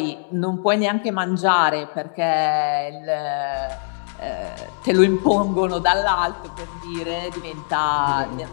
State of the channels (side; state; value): right; silent; digital silence